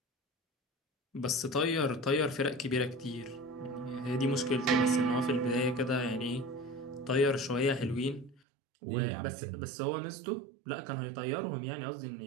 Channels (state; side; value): drops out; left; at 8.4 s